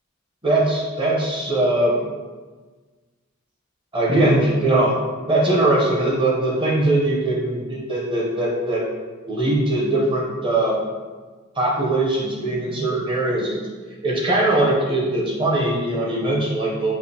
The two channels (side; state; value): both; normal; correlation 0.39